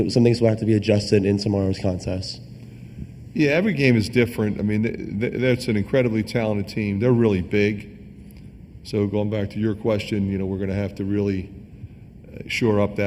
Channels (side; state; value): both; identical; correlation 1.00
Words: some things will have to be adjusted in tomorrow's contest? Yeah, every game is different. I mean, that's an incredibly talented team. They're really big. So going back to your question, we're going to have to really shore up